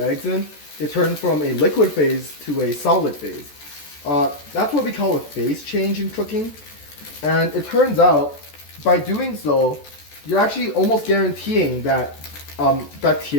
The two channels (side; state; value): right; late; 14 ms